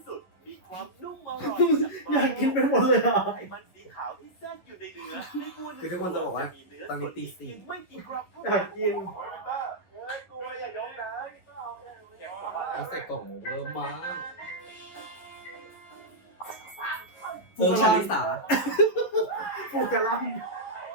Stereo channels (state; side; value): late; right; 11 ms